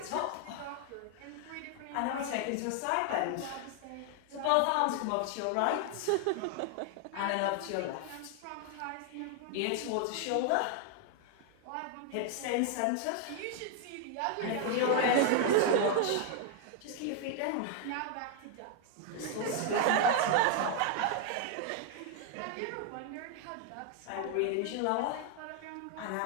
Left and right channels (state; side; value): different; both; correlation 0.00